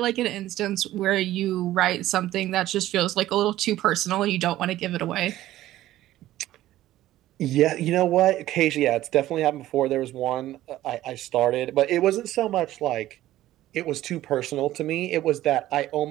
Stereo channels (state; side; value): quieter; left; 14.6 dB